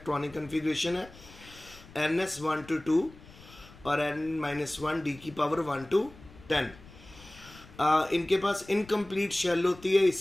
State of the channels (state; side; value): noise; left; rumble, 21 dB below the sound